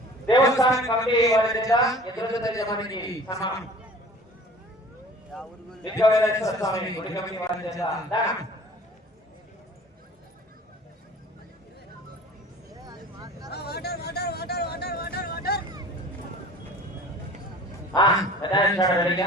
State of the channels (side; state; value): both; normal; correlation 0.45